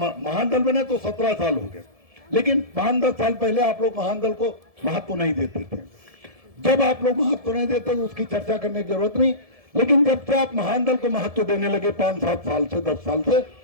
दल बने तो 17 साल हो गए, लेकिन 5-10 साल पहले आप लोग महान दल को महत्व नहीं देते थे। जब आप लोग महत्व नहीं देते तो उसकी चर्चा करने की जरूरत नहीं, लेकिन जब से आप महान दल को महत्व देने लगे 5-7 साल से, 10 साल से,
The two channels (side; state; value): left; late; 1.7 ms